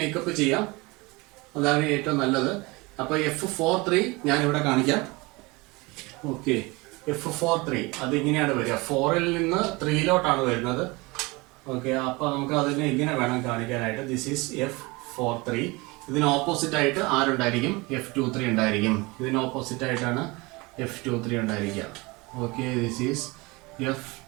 മേക്കപ്പ് ചെയ്യാം. അതാണ് ഏറ്റവും നല്ലത്. അപ്പൊ F43 ഞാൻ ഇവിടെ കാണിക്കാം. ഓക്കെ, F43 അത് ഇങ്ങനെയാണ് വരിക. 4-ൽ നിന്ന് 3-ലോട്ടാണ് വരുന്നത്. ഓക്കെ, അപ്പൊ നമുക്ക് അതിനെ ഇങ്ങനെ വേണം കാണിക്കാനായിട്ട്. This is F43. ഇതിന് ഓപ്പോസിറ്റ് ആയിട്ട് ആരുണ്ടായിരിക്കും? F23 ഉണ്ടായിരിക്കും. ഇതിന് ഓപ്പോസിറ്റ് ആയിട്ടാണ് F23 ഉണ്ടായിരിക്കുക. Okay, this is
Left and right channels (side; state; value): left; quieter; 24.6 dB